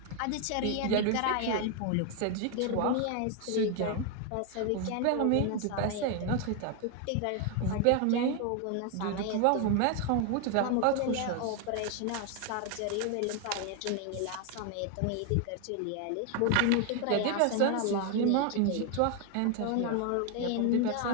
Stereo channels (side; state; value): both; different; correlation 0.01